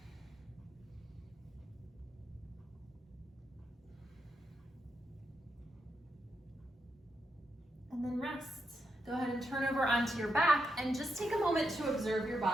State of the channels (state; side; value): normal; both; correlation 0.83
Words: And then rest. Go ahead and turn over onto your back and just take a moment to observe your